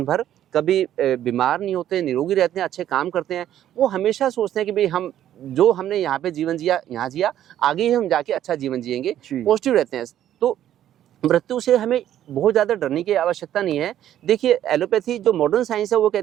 भर, कभी बीमार नहीं होते, निरोगी रहते हैं, अच्छे काम करते हैं। वो हमेशा सोचते हैं कि भाई हम जो हमने यहाँ पे जीवन जिया यहाँ जिया, आगे ही हम जाके अच्छा जीवन जिएंगे, पॉजिटिव रहते हैं। तो मृत्यु से हमें बहुत ज़्यादा डरने की आवश्यकता नहीं है। देखिए एलोपैथी जो मॉडर्न साइंस है वो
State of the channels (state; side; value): quieter; left; 11.5 dB